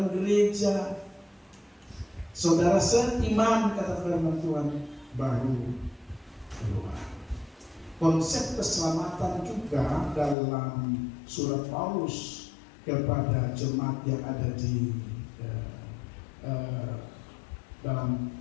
gereja. Saudara seiman, kata firman Tuhan, baru keluar. Konsep keselamatan juga dalam surat Paulus kepada jemaat yang ada di dalam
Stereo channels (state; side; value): drops out; right; at 10.4 s